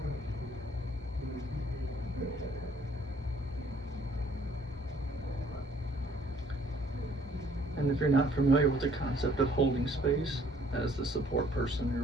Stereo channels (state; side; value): normal; both; correlation 0.61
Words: And if you're not familiar with the concept of holding space as the support person, you're